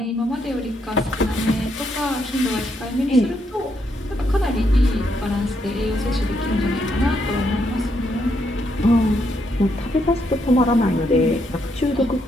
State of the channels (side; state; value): both; normal; correlation 0.77